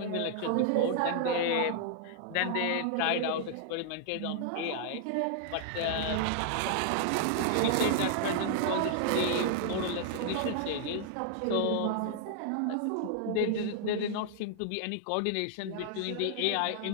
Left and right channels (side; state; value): both; different; correlation 0.00